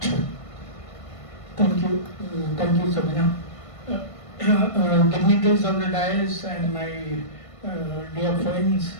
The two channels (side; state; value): right; late; 1.5 ms